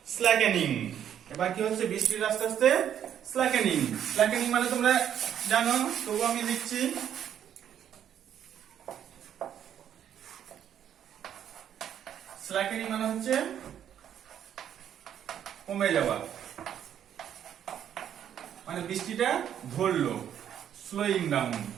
slackening. এবার কি হচ্ছে? বৃষ্টির আস্তে আস্তে স্ল্যাকেনিং। স্ল্যাকেনিং মানে তোমরা জানো, তবু আমি লিখছি। স্ল্যাকেনিং মানে হচ্ছে কমে যাওয়া, মানে বৃষ্টিটা ধরলো, স্লোয়িং ডাউন,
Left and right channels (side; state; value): left; quieter; 9.8 dB